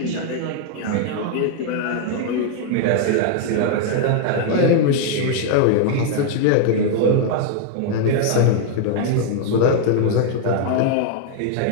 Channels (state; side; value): different; both; correlation 0.00